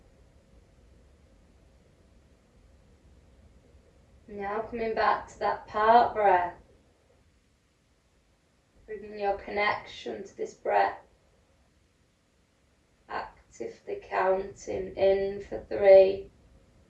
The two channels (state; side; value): identical; both; correlation 1.00